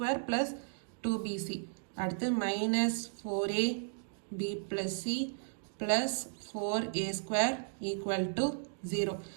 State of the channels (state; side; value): silent; left; digital silence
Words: plus 2bc, அடுத்து minus 4a b plus c plus 4a square equal to 0.